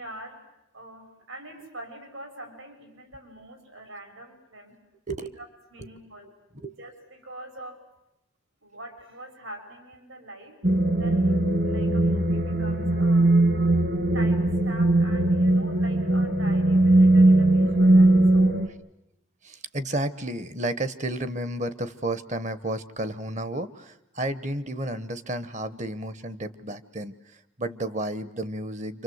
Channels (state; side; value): normal; both; correlation 0.81